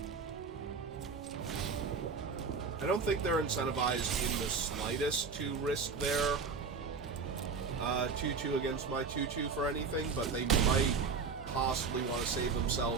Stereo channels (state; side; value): quieter; left; 5.0 dB